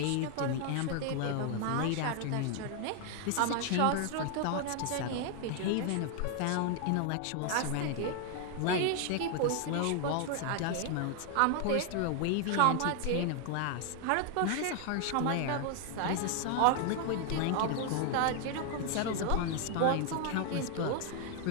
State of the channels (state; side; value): different; both; correlation 0.00